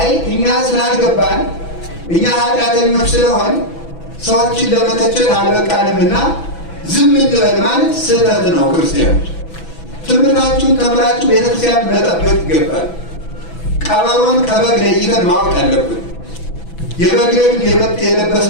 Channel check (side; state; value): right; late; 6.0 ms